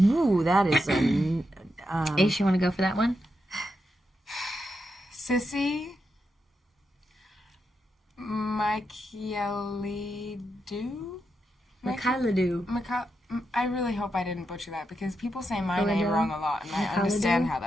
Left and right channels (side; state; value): both; normal; correlation 0.85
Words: that is a Ace, you want to go for that one? Sissy Michaelidu? Mikhailadu. I really hope I didn't butcher that, because people say my Philadelphia? name wrong a lot, and I understand how